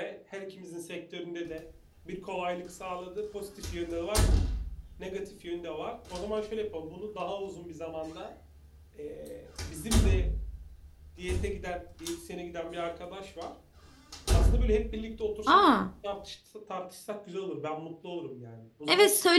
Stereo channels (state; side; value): identical; both; correlation 1.00